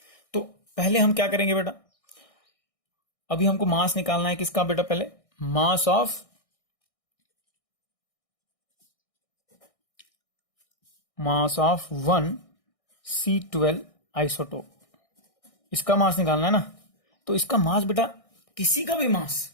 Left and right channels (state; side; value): late; right; 1.6 ms